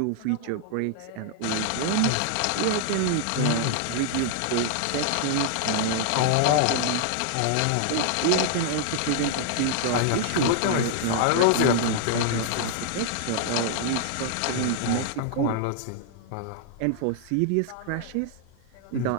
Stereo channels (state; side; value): different; both; correlation -0.01